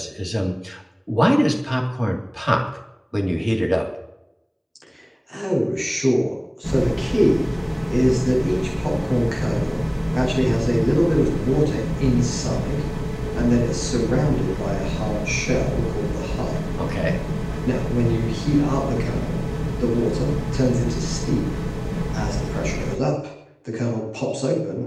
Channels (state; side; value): identical; both; correlation 1.00